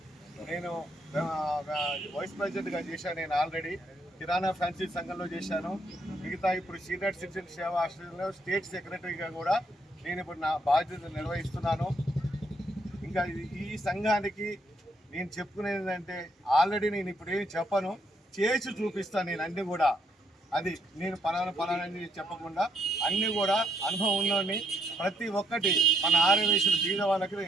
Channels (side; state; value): both; normal; correlation 0.73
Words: నేను వైస్ ప్రెసిడెంట్గా చేశాను. నేను ఆల్రెడీ కిరాణా ఫ్యాన్సీ సంఘంలో చేశాను. మిగతా ఇప్పుడు సీనియర్ సిటిజన్ సేవా ఆశ్రయంలో స్టేట్ సెక్రటరీగా కూడా నేను ఇప్పుడు నా బాధ్యత నిర్వహిస్తున్నాను. ఇంకా ఈ సంఘానికి నేను చెప్పుకునేది ఏంటంటే ఆల్రెడీ నేను ఇప్పుడు ఏమి చెప్పను, చేసి చూపిస్తాను. నేను అన్నీ కూడా అది నేను పలానని చెప్పకుండా అన్నీ కూడా అనుభవం ఉన్నోడిని. ప్రతి ఒక్కటి మన ఆర్యవైశ్యులు బీద వాళ్ళకి